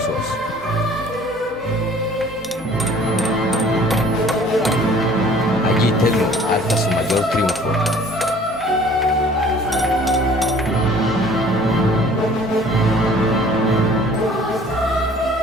Allí Telmo alza su mayor triunfo.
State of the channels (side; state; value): both; normal; correlation 0.52